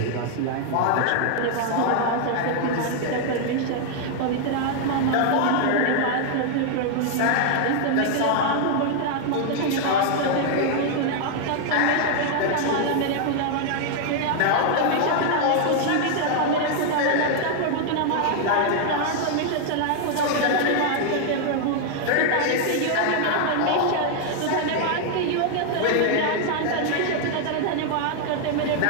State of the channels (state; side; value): different; both; correlation 0.00